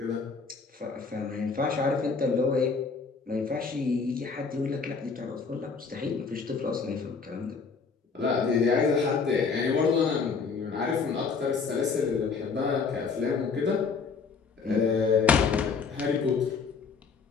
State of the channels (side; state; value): right; quieter; 5.2 dB